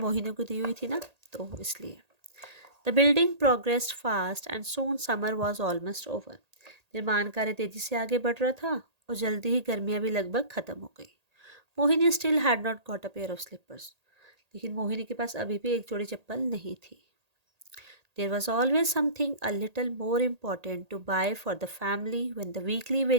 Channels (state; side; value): late; left; 1.8 ms